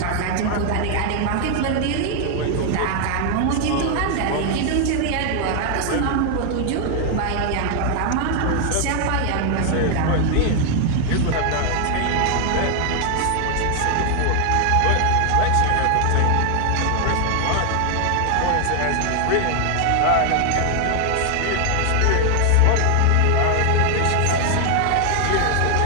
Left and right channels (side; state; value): both; different; correlation 0.00